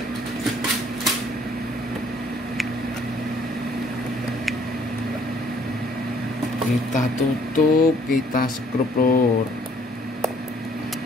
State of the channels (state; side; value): normal; both; correlation 0.61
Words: kita tutup, kita skrup lur.